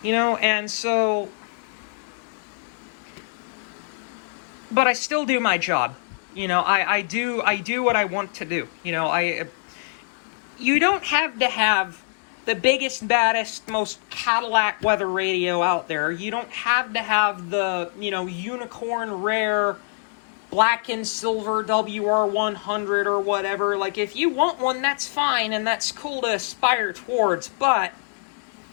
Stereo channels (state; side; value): silent; right; digital silence